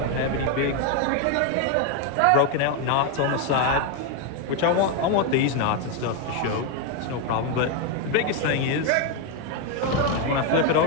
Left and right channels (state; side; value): different; both; correlation 0.01